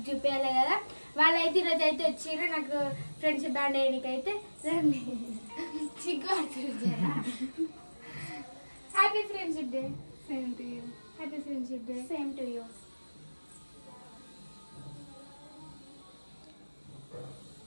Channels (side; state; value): both; inverted; correlation -1.00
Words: చూపించాలి కదా, వాళ్ళైతే ఈరోజు అయితే వచ్చారు నాకు ఫ్రెండ్షిప్ బ్యాండ్ వేయడానికైతే. రండి, చిగ్గు happy friendship day. Same to you. Happy friendship day. Same to you.